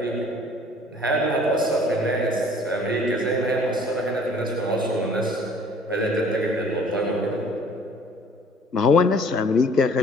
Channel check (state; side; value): normal; both; correlation 0.54